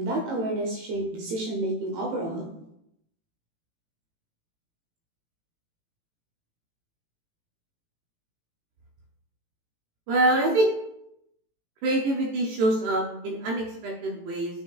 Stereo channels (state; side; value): late; left; 18 ms